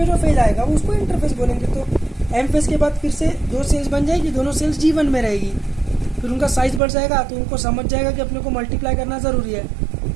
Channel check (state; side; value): drops out; left; at 6.8 s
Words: जो फेज आएगा वो उसको इंटरफेज बोलेंगे। तो एम फेज के बाद फिर से 2 सेल्स बन जाएगी, दोनों सेल्स G1 में रहेगी, फिर उनका साइज बढ़ जाएगा, तो उनको समझ जाएगा कि अपने को मल्टीप्लाई करना जरूरी है।